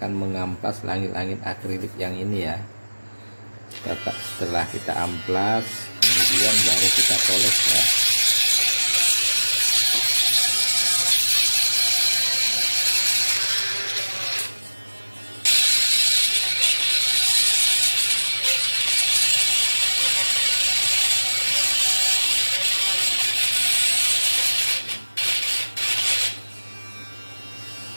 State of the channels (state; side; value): inverted; both; correlation -1.00